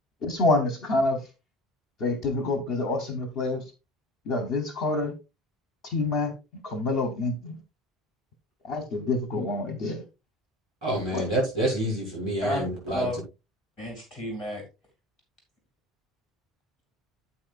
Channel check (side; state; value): both; normal; correlation 0.36